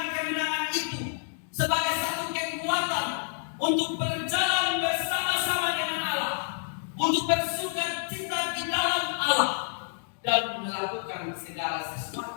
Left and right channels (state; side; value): silent; right; digital silence